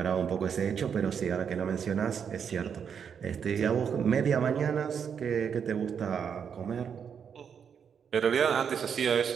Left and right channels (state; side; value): quieter; left; 7.3 dB